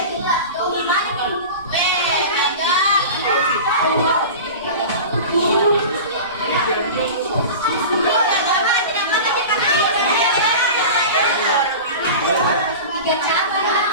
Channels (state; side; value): inverted; both; correlation -0.32